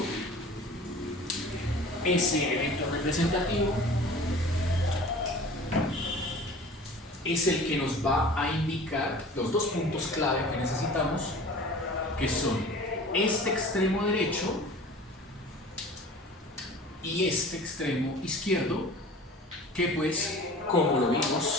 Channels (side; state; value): both; normal; correlation 0.42